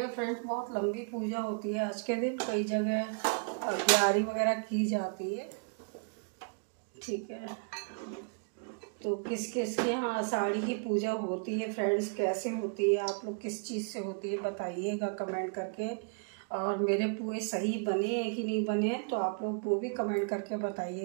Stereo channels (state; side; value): quieter; left; 38.2 dB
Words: फ्रेंड्स बहुत लंबी पूजा होती है आज के दिन, कई जगह अग्यारी वगैरह की जाती है। ठीक है, तो किस किस के यहाँ आषाढ़ी की पूजा होती है फ्रेंड्स, कैसे होती है, आप लोग किस चीज़ से होती है बताइएगा कमेंट करके। और मेरे पुए सही बने हैं कि नहीं बने हैं तो आप लोग वो भी कमेंट करके